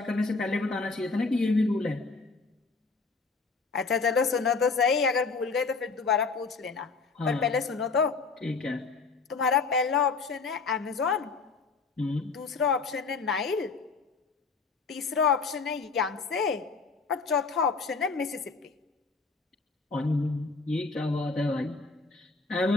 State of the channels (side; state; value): right; quieter; 4.5 dB